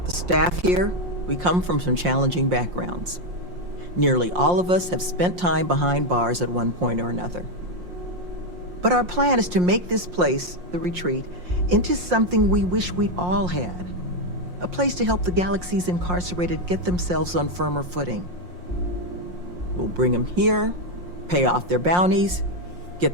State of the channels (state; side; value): late; left; 5.6 ms